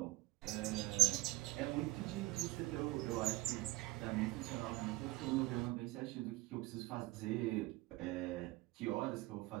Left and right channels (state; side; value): quieter; left; 20.3 dB